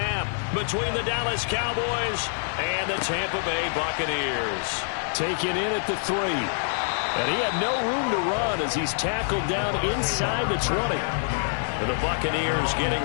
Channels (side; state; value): right; silent; digital silence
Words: between the Dallas Cowboys and the Tampa Bay Buccaneers. Taken in at the 3. And he had no room to run as he's tackled down inside the 20. And the Buccaneers getting